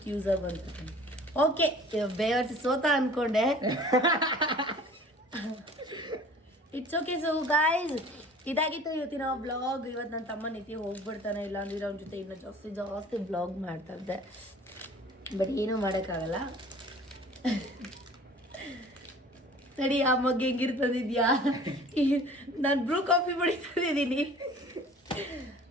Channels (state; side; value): normal; both; correlation 0.47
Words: ಯೂಸರ್ ಬಂತು. ಓಕೆ, ಬೇವರ್ಸಿ ಸೋತ ಅಂದ್ಕೊಂಡೆ. It's okay. ಸೊ ಗಾಯ್ಸ್, ಇದಾಗಿತ್ತು ಇವತ್ತಿನ ವ್ಲಾಗ್. ಇವತ್ತು ನನ್ನ ತಮ್ಮ ನಿತ್ಯ ಹೋಗ್ಬಿಡ್ತಾನೆ, ಇಲ್ಲ ಅಂದ್ರೆ ಅವ್ನ ಜೊತೆ ಇನ್ನೂ ಜಾಸ್ತಿ ವ್ಲಾಗ್ ಮಾಡ್ತಾ ಇದ್ದೆ. ಬಟ್ ಏನೂ ಮಾಡೋಕ್ಕಾಗಲ್ಲ. ಸರಿ, ಆ ಮಗ್ಗೆ ಹೆಂಗಿರ್ತದಿದ್ಯಾ? ನಾನು ಬ್ರೂ ಕಾಫಿ ಕುಡಿತಿದ್ದೀನಿ.